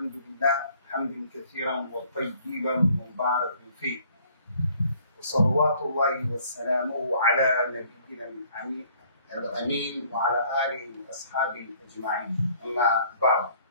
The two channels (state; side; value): inverted; both; correlation -0.59